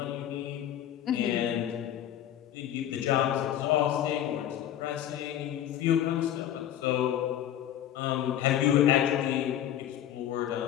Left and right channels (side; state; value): right; quieter; 11.2 dB